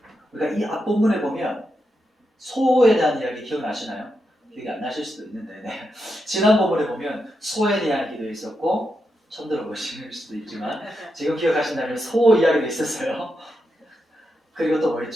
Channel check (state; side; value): normal; both; correlation 0.85